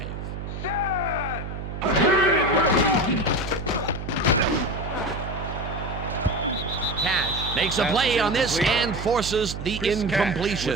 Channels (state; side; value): noise; right; hum, 7 dB below the sound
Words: Cash makes a play on this and forces the